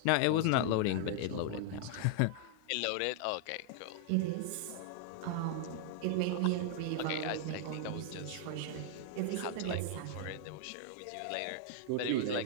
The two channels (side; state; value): both; different; correlation -0.01